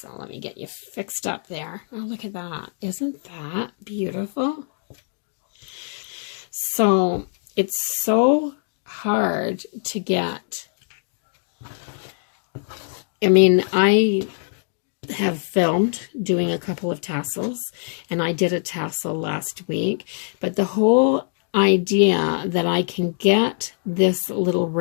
let me get you fixed up there. Oh, look at that. Isn't that beautiful? So it's so hard to get. I mean, I have filmed doing a couple of tassels, and I did a tassel last week, but the whole idea that I can get this little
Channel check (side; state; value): right; silent; 63 dB below the other